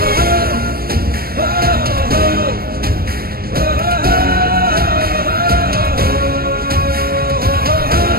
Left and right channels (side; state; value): left; late; 0.44 ms